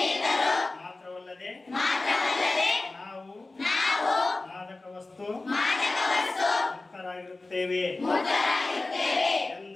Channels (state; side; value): quieter; right; 3.2 dB